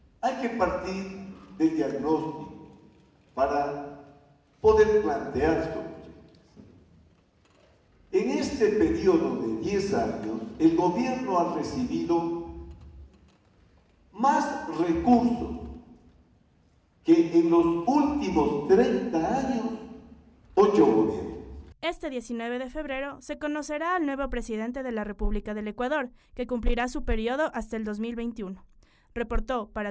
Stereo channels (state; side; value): identical; both; correlation 1.00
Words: Hay que partir del diagnóstico para poder plantear soluciones. En este periodo de 10 años, el gobierno ha recibido más recursos que en los últimos 30 años, 8 gobiernos. Este 19 de febrero se conocerá al nuevo presidente de la República del Ecuador, que cumplirá su periodo hasta el 2021. Reportó